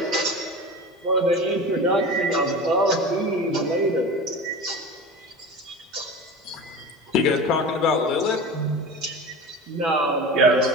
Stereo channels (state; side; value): normal; both; correlation 0.31